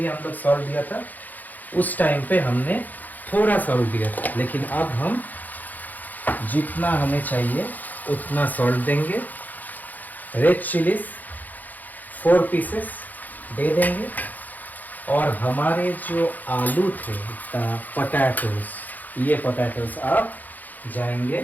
हम लोग सॉल्ट दिया था, उस टाइम पे हमने थोड़ा सॉल्ट दिया था, लेकिन अब हम जितना हमें चाहिए उतना सॉल्ट देंगे। रेड चिलीज 4 पीसेस दे देंगे। और हमारे जो आलू थे पोटैटोज, ये पोटैटोज अब जाएंगे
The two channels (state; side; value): late; right; 0.083 ms